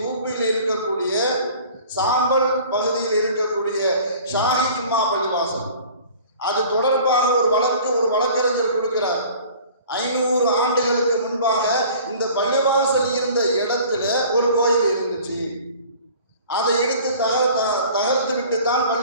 யூபியில் இருக்கக்கூடிய சாம்பல் பகுதியில் இருக்கக்கூடிய ஷாஹி ஜும்மா பள்ளிவாசல், அது தொடர்பாக ஒரு வழக்கறிஞர் கொடுக்கிறார். 500 ஆண்டுகளுக்கு முன்பாக இந்த பள்ளிவாசல் இருந்த இடத்துல ஒரு கோயில் இருந்துச்சு, அதை எடுத்து தகர்த்து விட்டு தான்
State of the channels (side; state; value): both; inverted; correlation -0.47